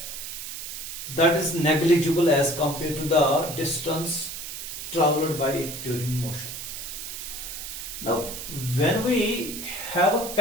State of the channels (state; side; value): noise; right; hiss, 8 dB below the sound